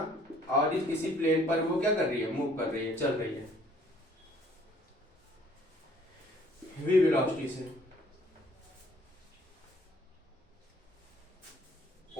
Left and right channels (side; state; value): both; normal; correlation 0.59